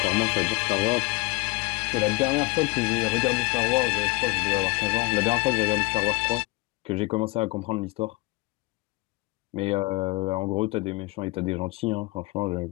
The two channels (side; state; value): right; quieter; 23.5 dB